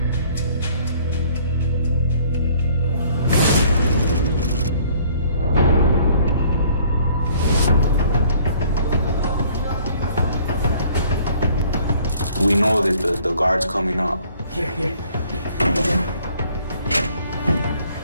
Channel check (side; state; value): both; inverted; correlation -0.58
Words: We know that the guard's coming up. Here.